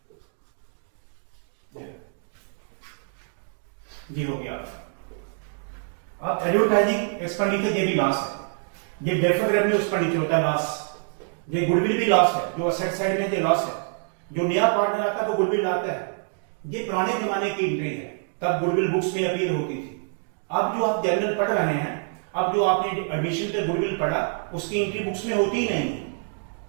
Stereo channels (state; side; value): silent; left; 59 dB below the other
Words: ये हो गया। अब एडवर्टाइजिंग एक्सपेंडिचर ये भी लॉस है, ये डेफर्ड रेवेन्यू एक्सपेंडिचर होता है लॉस, ये गुडविल भी लॉस है, जो असेट साइड में ये लॉस है। जो नया पार्टनर आता है वो गुडविल लाता है, ये पुराने जमाने की एंट्री है, तब गुडविल बुक्स में अपीयर होती थी। अब जो आप जनरल पढ़ रहे हैं, अब जो आपने एडमिशन पे गुडविल पढ़ा, उसकी एंट्री बुक्स में होती ही नहीं है,